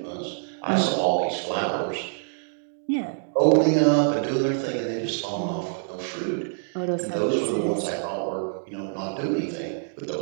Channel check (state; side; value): silent; left; digital silence